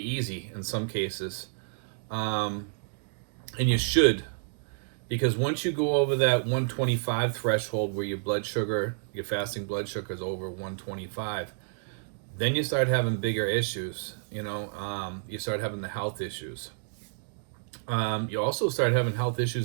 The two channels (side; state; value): left; silent; digital silence